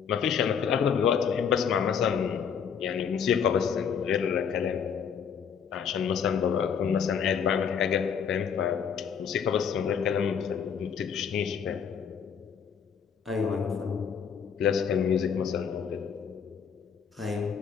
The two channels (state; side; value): quieter; right; 7.2 dB